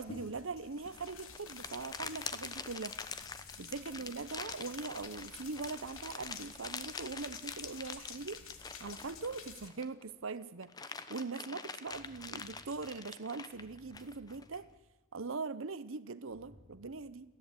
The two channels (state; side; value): normal; both; correlation -0.17